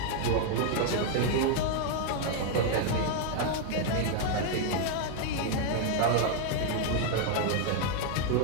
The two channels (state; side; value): different; both; correlation 0.00